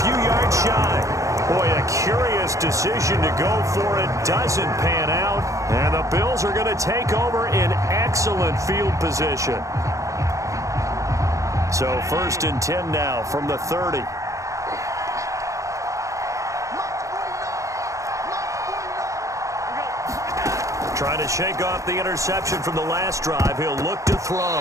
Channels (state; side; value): late; left; 0.15 ms